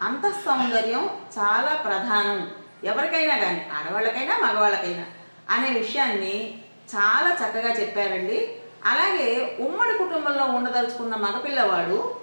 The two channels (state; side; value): inverted; both; correlation -1.00